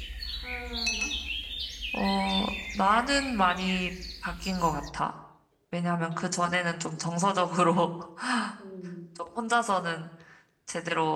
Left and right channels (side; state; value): both; identical; correlation 1.00